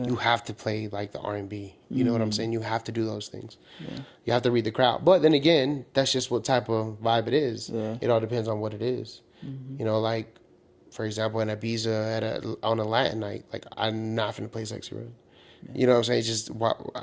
You have to play like the R&B. You know what I'm saying? You have to do those things. You have to read the crowd. But then again, that's just what type of vibe it is. Yeah. It all depends on what it is. You know, like for example, in Ibiza on a Latin night, like I'm not gonna play Sexy Red. You know what I'm saying?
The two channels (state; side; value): identical; both; correlation 1.00